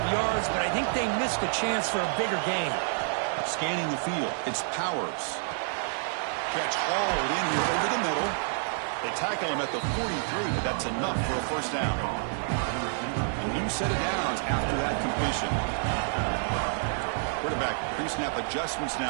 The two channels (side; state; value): left; silent; digital silence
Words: yards, but I think they missed a chance for a bigger gain. Scanning the field, it's Powers. Catch hauled in here over the middle. They tackle him at the 43, but that's enough for a first down. A new set of downs after that completion. Quarterback pre-snap adjustments